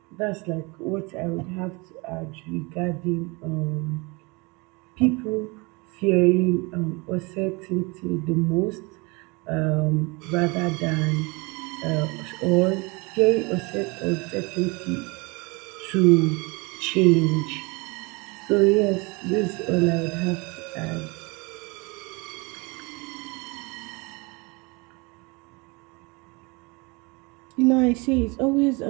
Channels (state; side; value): quieter; left; 27.4 dB